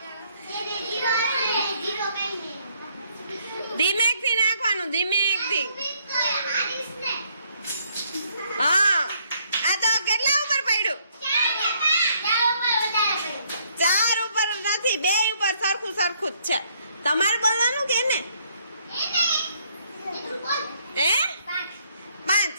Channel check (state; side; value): inverted; both; correlation -0.68